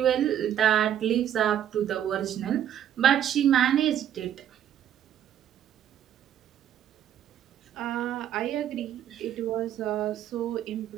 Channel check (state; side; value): quieter; left; 10.3 dB